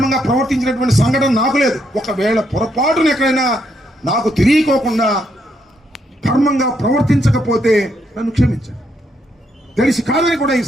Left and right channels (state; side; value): normal; both; correlation 0.76